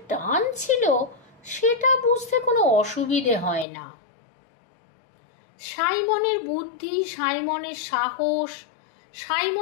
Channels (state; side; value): drops out; right; at 3.7 s